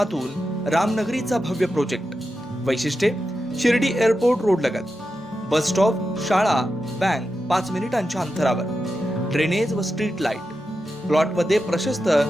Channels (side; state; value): both; normal; correlation 0.89